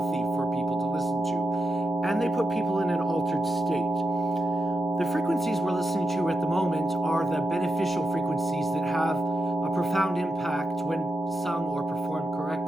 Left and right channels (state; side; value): normal; both; correlation 0.87